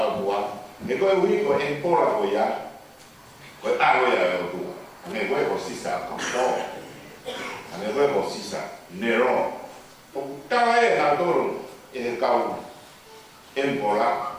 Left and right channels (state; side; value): identical; both; correlation 1.00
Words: tua. Ne ko wi ko empora ko ya. Ko alo ya o tua. Ne ko sisa ko. Ne ko sisa nero. O tala e na toro e kau